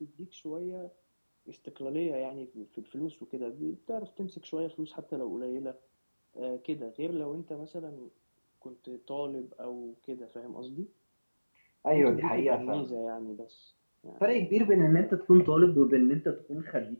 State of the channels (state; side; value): inverted; both; correlation -1.00